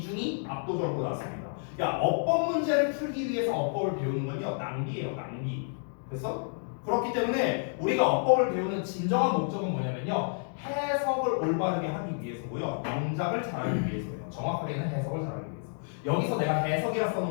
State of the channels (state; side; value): silent; right; 58 dB below the other